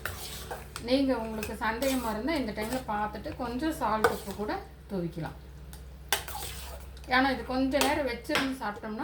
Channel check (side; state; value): both; identical; correlation 1.00